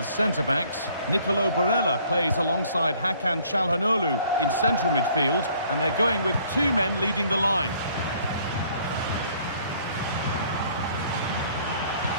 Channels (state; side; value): inverted; both; correlation -0.59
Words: centre-backs. Nicolo Barella plays alongside Hakan Çalhanoğlu in central midfield, and they're going with two men leading the line.